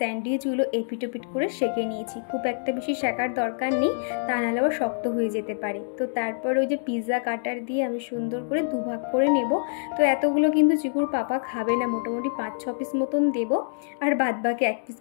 এপিটোপিট করে সেঁকে নিয়েছি। খুব একটা বেশি সেঁকার দরকার নেই, তা নাহলে আবার শক্ত হয়ে যেতে পারে। তো তারপর ওই যে পিৎজা কাটার দিয়ে আমি সুন্দর করে দুভাগ করে নেব। তো এতগুলো কিন্তু চিকুর পাপা খাবে না, মোটামুটি 5-6 পিস মতন দেবো, আর বাদবাকি 1 পিস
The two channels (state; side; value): silent; right; digital silence